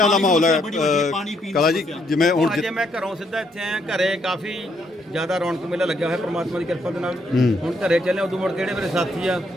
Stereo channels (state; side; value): normal; both; correlation 0.73